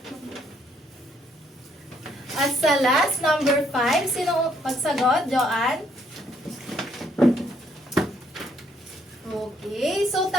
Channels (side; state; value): both; normal; correlation 0.69